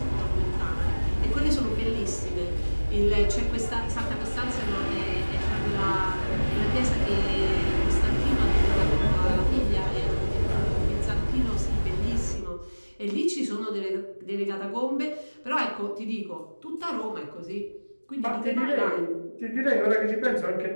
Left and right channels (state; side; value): inverted; both; correlation -1.00